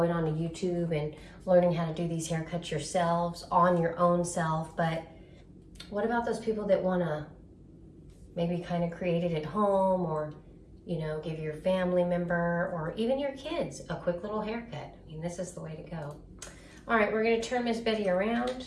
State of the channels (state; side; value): identical; both; correlation 1.00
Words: on to YouTube and learning how to do these haircuts yourselves on your own self. But what about those people that want to maybe kind of create it at home, or you know, give your family member or even your kids a quick little haircut? I mean, this is the way to go. All right, we're going to turn Miss Betty around.